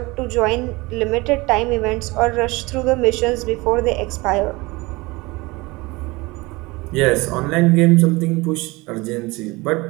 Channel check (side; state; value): left; quieter; 23.1 dB